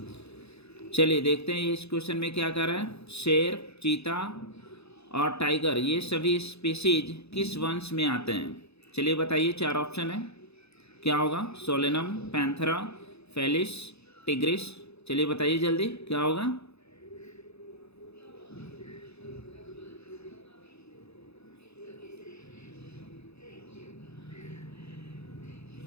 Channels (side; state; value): right; late; 0.79 ms